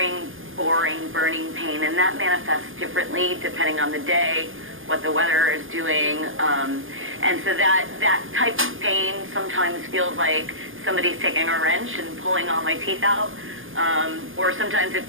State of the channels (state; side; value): late; left; 0.59 ms